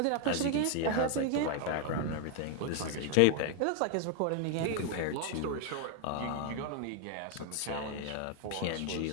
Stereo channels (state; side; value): different; both; correlation 0.00